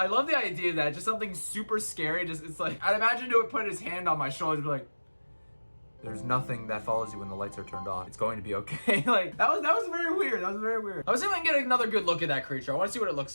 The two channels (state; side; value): inverted; both; correlation -1.00